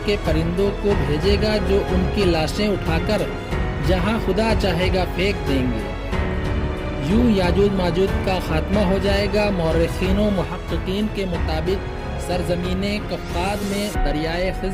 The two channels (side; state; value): both; identical; correlation 1.00